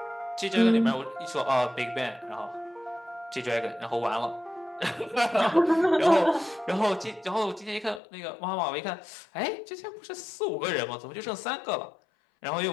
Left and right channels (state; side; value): drops out; right; at 8.0 s